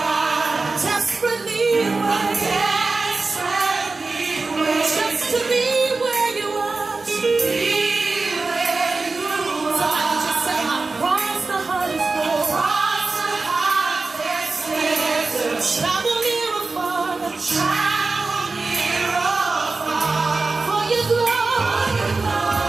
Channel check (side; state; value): left; quieter; 3.7 dB